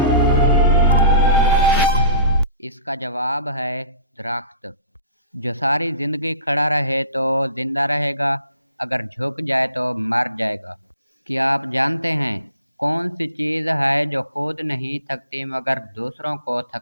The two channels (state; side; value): inverted; both; correlation -0.44